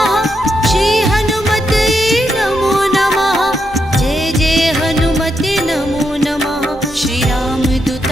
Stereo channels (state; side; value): normal; both; correlation 0.82